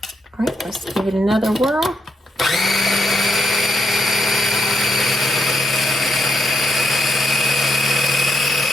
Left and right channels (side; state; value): both; normal; correlation 0.81